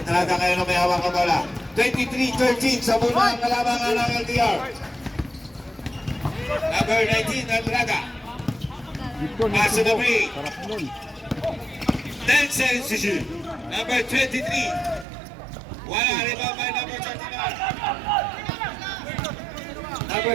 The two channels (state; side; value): drops out; left; at 15.1 s